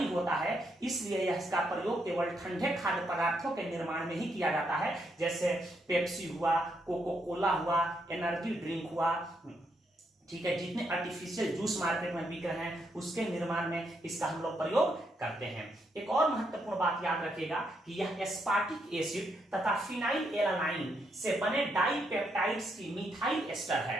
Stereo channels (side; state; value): both; normal; correlation 0.78